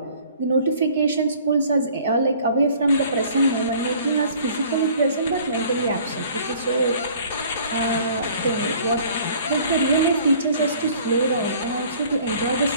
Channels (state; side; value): inverted; both; correlation -0.53